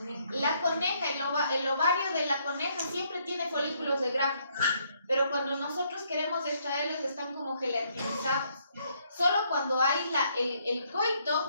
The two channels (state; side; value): inverted; both; correlation -0.70